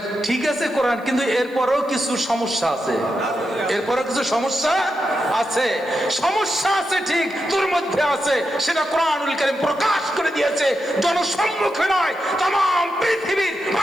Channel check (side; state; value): left; noise; hiss, 29 dB below the sound